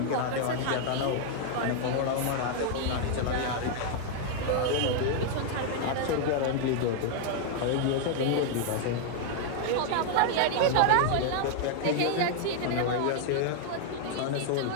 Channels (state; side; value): different; both; correlation 0.00